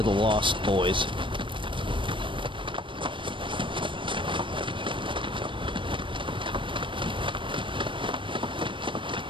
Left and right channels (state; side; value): late; left; 0.24 ms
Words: the Lost Boys.